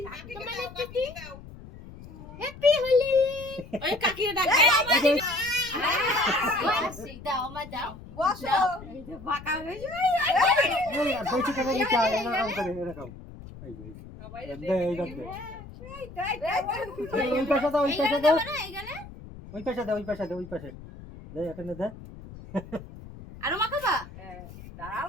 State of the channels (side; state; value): left; noise; rumble, 16 dB below the sound